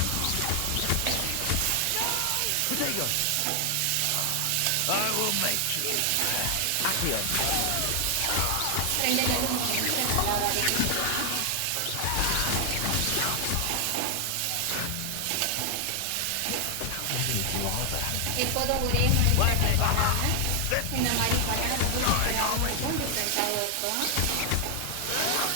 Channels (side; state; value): both; different; correlation 0.00